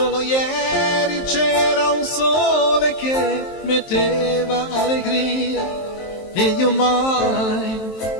ieri c'era un sole che metteva allegria e io mai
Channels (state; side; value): late; right; 23 ms